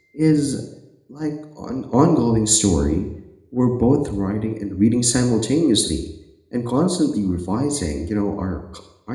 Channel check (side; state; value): both; identical; correlation 1.00